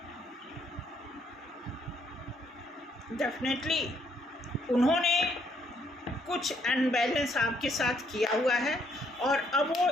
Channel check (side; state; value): both; normal; correlation 0.70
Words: डेफिनेटली उन्होंने कुछ अनबैलेंस आपके साथ किया हुआ है और अब वो